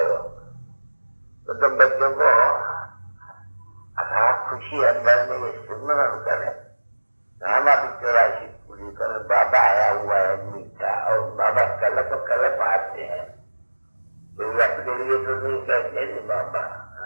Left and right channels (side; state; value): both; inverted; correlation -1.00